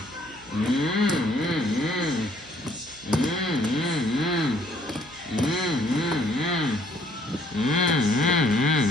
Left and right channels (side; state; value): right; noise; hum, 24 dB below the sound